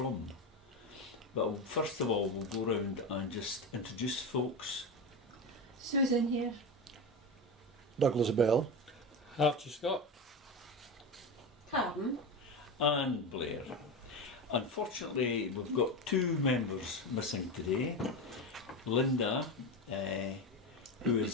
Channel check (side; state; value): both; normal; correlation 0.20